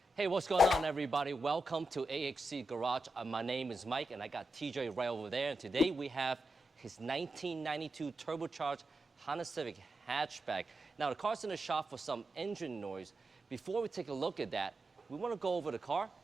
Hey, what's going on, everybody? Welcome to AXC Garage. My name is Mike, and I got TJ right over there. And today we have his 1992 turbocharged Honda Civic Hatchback. Now, the car's in the shop for some engine noise. Before we take a look at that, we want to go over the car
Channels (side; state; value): both; normal; correlation 0.88